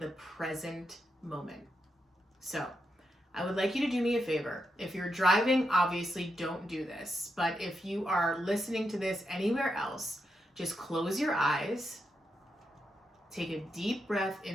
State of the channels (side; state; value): both; normal; correlation 0.84